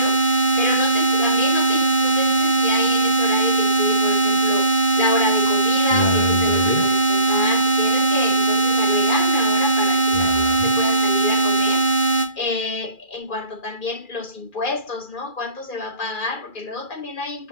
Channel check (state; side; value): late; right; 2.4 ms